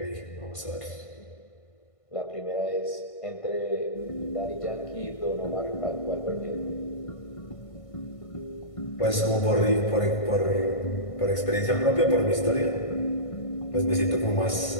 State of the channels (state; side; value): late; right; 1.5 ms